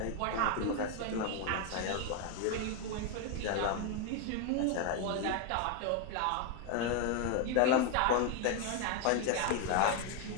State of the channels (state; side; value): different; both; correlation 0.01